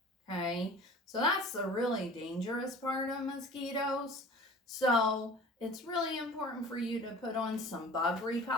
Okay, so that's the really dangerous part of mosquitoes. So it's really important for you to put on some bug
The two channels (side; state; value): both; normal; correlation 0.43